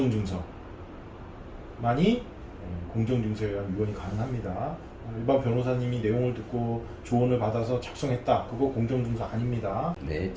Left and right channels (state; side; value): identical; both; correlation 1.00